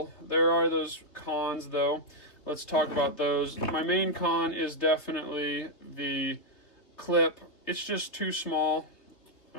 There are those cons, though. Let's talk about those. My main con is definitely the clip. It's just too small.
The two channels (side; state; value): right; late; 3.0 ms